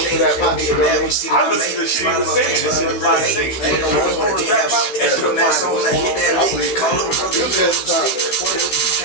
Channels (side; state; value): right; late; 15 ms